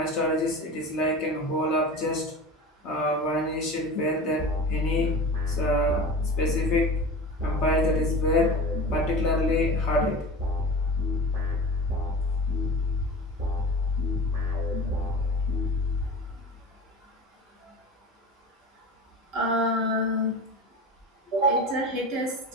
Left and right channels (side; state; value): both; normal; correlation 0.33